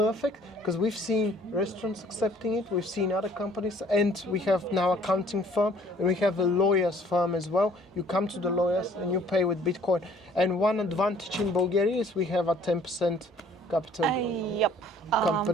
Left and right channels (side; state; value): both; normal; correlation 0.56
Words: because we've seen restaurants accepting it, we've seen other companies, and we have now accounting firm and we have a lawyer's firm as well. You come to the lawyers and you pay with Bitcoin. And one advantage in Bulgaria is we have a 10% capital Yep.